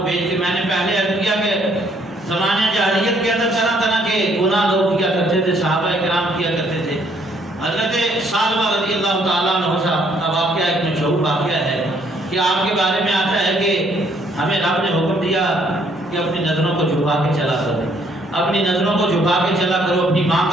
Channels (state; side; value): normal; both; correlation 0.66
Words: بھیج کے۔ میں نے پہلے عرض کیا کہ زمانے جاہلیت کے اندر طرح طرح کے گناہ لوگ کیا کرتے تھے، صحابہ کرام کیا کرتے تھے۔ حضرت ثعلبہ رضی اللہ تعالیٰ عنہ کا واقعہ ایک مشہور واقعہ ہے کہ آپ کے بارے میں آتا ہے کہ ہمیں رب نے حکم دیا کہ اپنی نظروں کو جھکا کے چلا کرو، اپنی نظروں کو جھکا کے چلا کرو، اپنی ماں